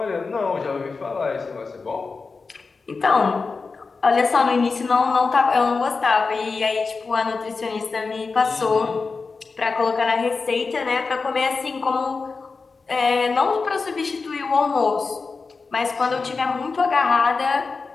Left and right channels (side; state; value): right; quieter; 4.4 dB